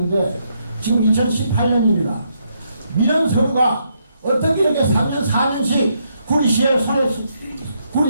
지금 2018년입니다. 민원 서류가 어떻게 이렇게 3년 4년씩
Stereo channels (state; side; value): inverted; both; correlation -0.76